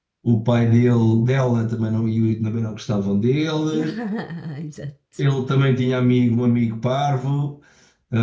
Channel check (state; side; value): identical; both; correlation 1.00